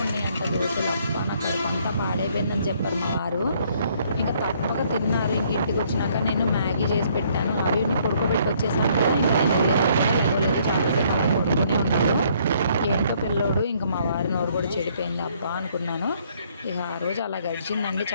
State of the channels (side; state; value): both; inverted; correlation -0.65